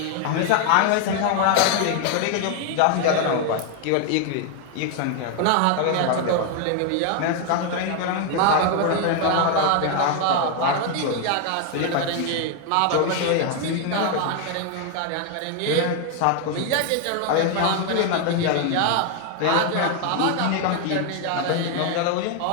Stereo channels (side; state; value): both; different; correlation 0.00